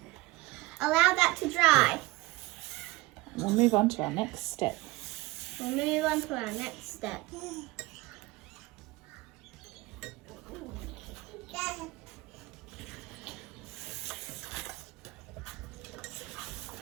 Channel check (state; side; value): quieter; left; 20.9 dB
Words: Allow that to dry. We'll move on to our next step. We'll move on to our next step.